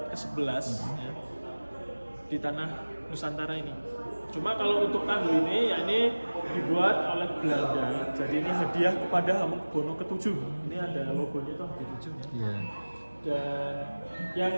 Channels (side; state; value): both; inverted; correlation -1.00